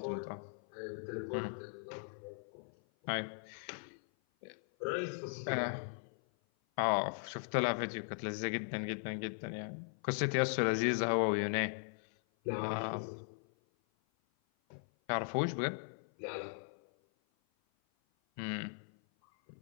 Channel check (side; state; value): right; silent; 52 dB below the other